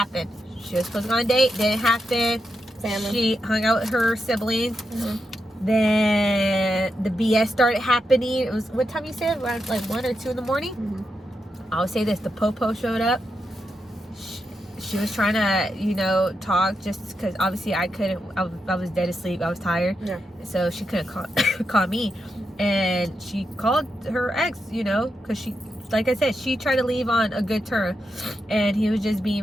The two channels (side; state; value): both; normal; correlation 0.85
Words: She was supposed to go on a date, didn't happen. Family. She hung out with her siblings. Then the BS started happening. It was, what time you said? Around like 1 or 2 in the morning? I would say this, the popo showed up. She was trying to, talk just because obviously I couldn't, I was dead asleep. I was tired. Yeah. So she couldn't call me. And she called her ex, because she, like I said, she tried to leave on a good term. And he was just